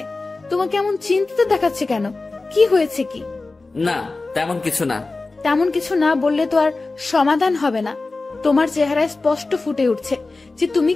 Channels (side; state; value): right; quieter; 3.5 dB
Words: তোমাকে এমন চিন্তিত দেখাচ্ছে কেন? কি হয়েছে কি? না, তেমন কিছু না। তেমন কিছু না বললে তো আর সমাধান হবে না। তোমার চেহারায় স্পষ্ট ফুটে উঠছে যে তুমি